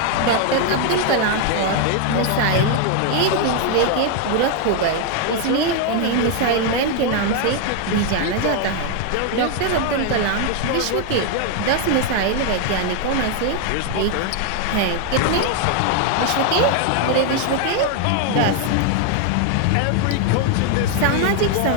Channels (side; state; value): both; different; correlation 0.01